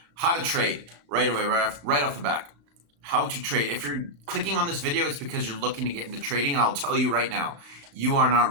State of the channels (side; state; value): left; late; 35 ms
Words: How to trade right away, right off the back. How to trade. If you're clicking on this video, it's because you're looking to get into trading, and I'll tell you right now, you are